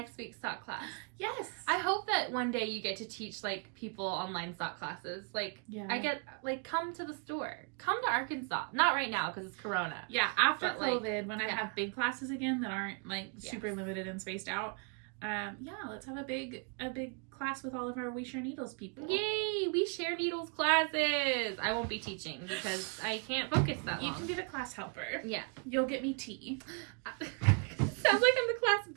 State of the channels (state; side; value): quieter; left; 37.9 dB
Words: week's sock class. Yes. I hope that one day you get to teach like people online sock classes. Come to the store. Come to Arkansas. Not right now because it's Corona. Yeah, after COVID, when I have big classes again that aren't like super limited and spaced out. Let's have a big class with all of our We Share Needles people. Yay! We Share Needles classes! I won't be teaching because I can't focus that long. You can be the class helper. Yeah. You'll get me tea. Sounds like I'm the class